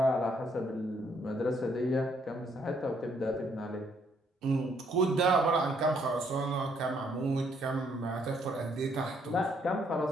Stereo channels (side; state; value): both; normal; correlation 0.69